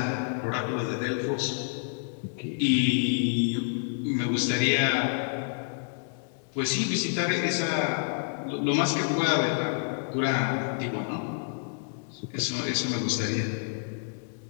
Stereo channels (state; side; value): silent; right; digital silence